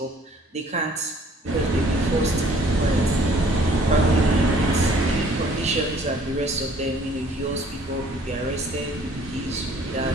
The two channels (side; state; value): both; normal; correlation 0.57